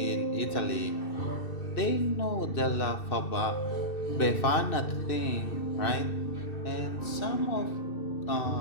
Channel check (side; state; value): right; late; 2.6 ms